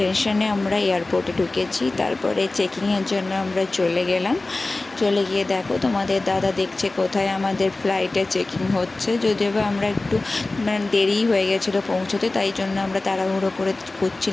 আমরা এয়ারপোর্টে ঢুকেছি। তারপরে চেকিংয়ের জন্য আমরা চলে গেলাম। চলে গিয়ে দেখো তোমাদের দাদা দেখছে কোথায় আমাদের ফ্লাইটে চেকিং হচ্ছে। যদিও বা আমরা একটু দেরি হয়ে গেছিলো পৌঁছতে, তাই জন্য আমরা তাড়াহুড়ো করে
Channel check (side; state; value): right; quieter; 3.1 dB